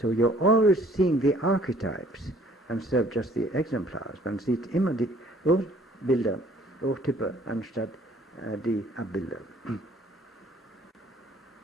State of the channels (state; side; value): normal; both; correlation 0.57